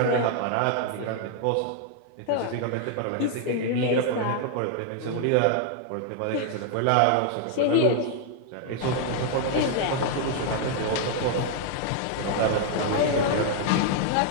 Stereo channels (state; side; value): different; both; correlation 0.00